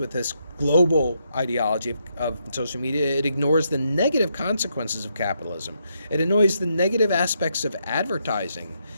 this global ideology of social media, it ignores the negative consequences of capitalism. It ignores the negative aspects of advertising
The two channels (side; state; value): both; inverted; correlation -0.78